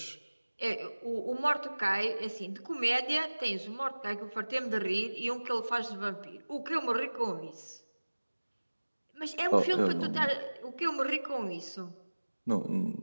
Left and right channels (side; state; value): both; inverted; correlation -1.00